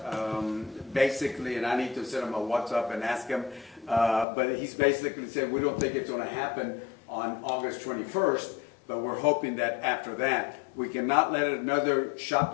basically, and I need to send him a WhatsApp and ask him, but he's basically said we don't think it's going to happen on August 21st, but we're hoping that after that. We cannot let another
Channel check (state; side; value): drops out; right; at 4.2 s